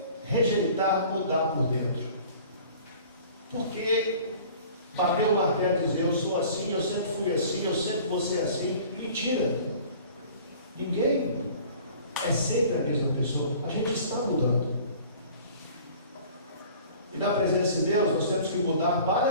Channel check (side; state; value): both; inverted; correlation -0.47